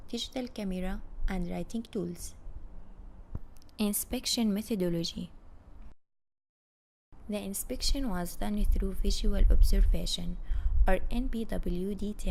digital camera, and writing tools. Inspection methodology. The inspection was done through visual observation, or NPWD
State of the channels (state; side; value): identical; both; correlation 1.00